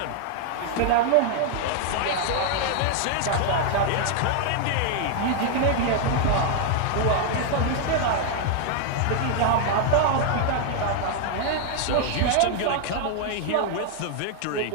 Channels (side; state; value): both; different; correlation 0.00